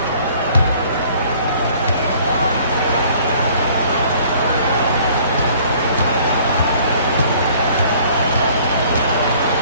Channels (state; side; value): inverted; both; correlation -0.55